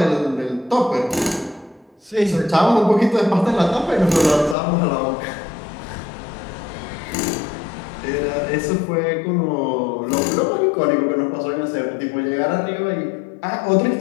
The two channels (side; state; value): right; drops out; at 4.5 s